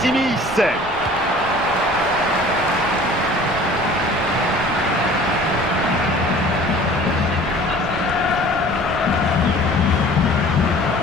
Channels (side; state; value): left; noise; hum, 22 dB below the sound